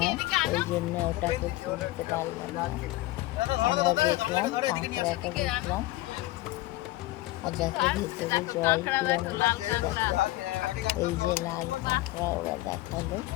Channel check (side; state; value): right; quieter; 18.4 dB